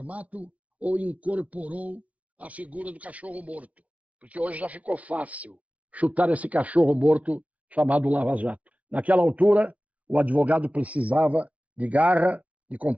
ou incorporou a figura do cachorro morto. Porque hoje já ficou fácil chutar esse cachorro morto chamado Lava Jato. Naquela altura, o advogado precisava de garra, de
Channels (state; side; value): late; left; 0.068 ms